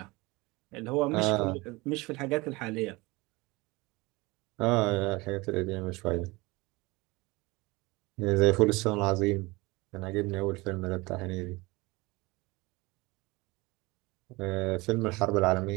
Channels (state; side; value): quieter; left; 23.2 dB